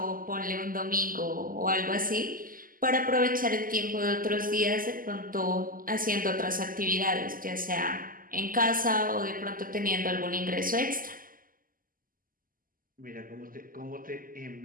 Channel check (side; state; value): left; late; 0.41 ms